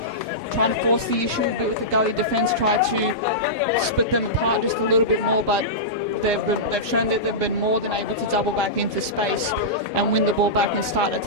trying to force the issue a bit with the Gully defence, try to split them apart just a little bit more, but they've shown that they've been more than able to double back into space and win the ball back and start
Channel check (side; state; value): both; normal; correlation -0.15